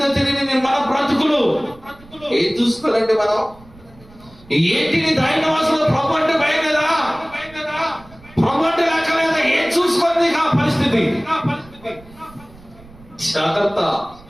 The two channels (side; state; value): right; noise; rumble, 24 dB below the sound